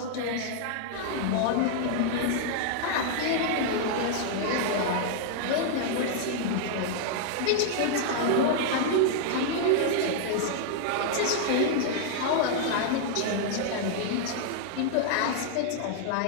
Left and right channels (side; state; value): both; different; correlation 0.00